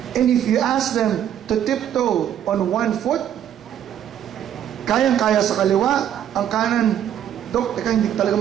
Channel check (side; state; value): left; quieter; 10.2 dB